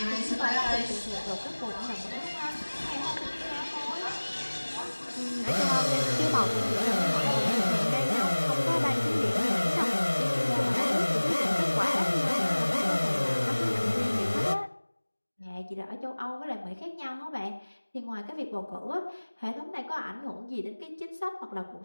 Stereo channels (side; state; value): both; inverted; correlation -1.00